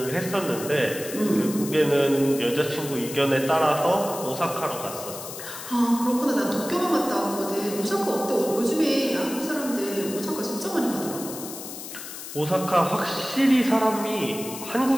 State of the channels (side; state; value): left; noise; hiss, 10 dB below the sound